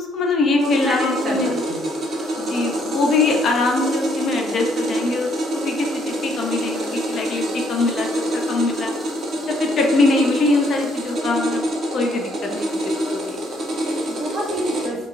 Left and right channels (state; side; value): normal; both; correlation 0.69